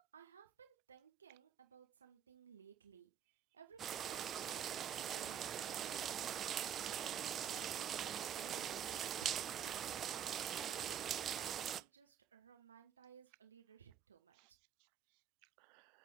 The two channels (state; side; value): quieter; left; 9.2 dB